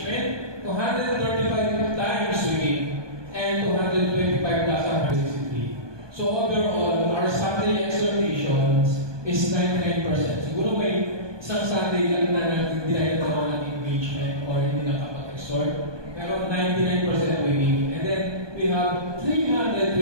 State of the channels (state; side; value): late; left; 1.2 ms